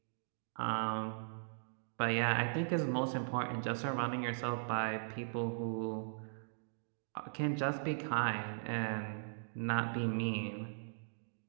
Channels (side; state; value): left; silent; digital silence